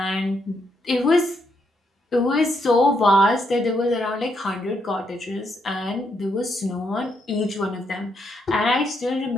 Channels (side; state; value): both; normal; correlation 0.77